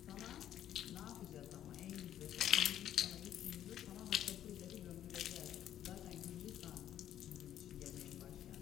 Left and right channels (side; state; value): right; quieter; 11.2 dB